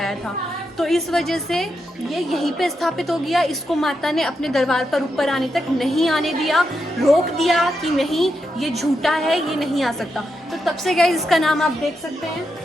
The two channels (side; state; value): both; normal; correlation 0.85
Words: था। तो इस वजह से ये यहीं पे स्थापित हो गया। इसको माता ने अपने दरबार पर ऊपर आने तक नहीं आने दिया, रोक दिया कि नहीं ये झूठा है, ये नहीं आ सकता। तो तब से गाइस इसका नाम आप देख सकते हैं,